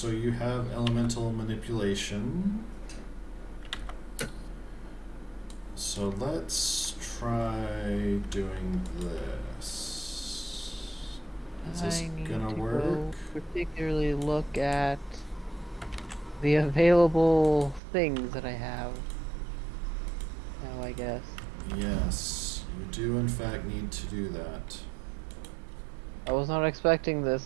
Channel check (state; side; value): drops out; left; at 17.8 s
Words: you have elemental manipulation. So let's try doing this. Is this gonna work? Particularly look at the available things that I have. Now, I guess. Yes, you do in fact need to do that. I was not expecting